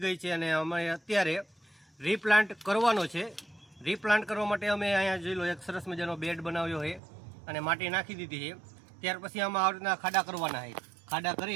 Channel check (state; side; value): drops out; left; at 7.0 s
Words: ગઈ છે અને અમે અત્યારે રીપ્લાન્ટ કરવાનો છે. રીપ્લાન્ટ કરવા માટે અમે અહીંયા જોઈ લો એક સરસ મજાનો બેડ બનાવ્યો છે અને માટી નાખી દીધી છે. ત્યાર પછી આમાં આ રીતના ખાડા કરવાના છે. ખાડા